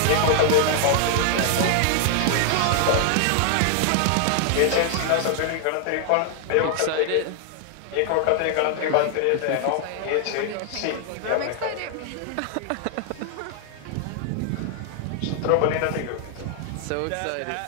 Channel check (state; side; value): different; both; correlation 0.00